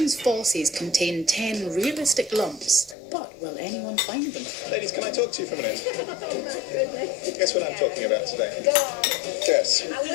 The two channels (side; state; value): right; drops out; at 3.0 s